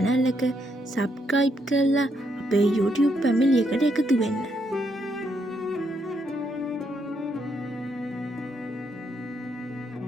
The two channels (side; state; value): both; normal; correlation 0.76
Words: එක subscribe කරලා අපේ YouTube family එකට එකතු වෙන්න.